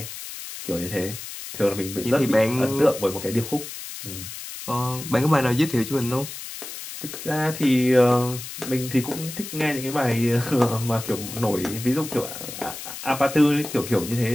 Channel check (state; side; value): noise; left; hiss, 10 dB below the sound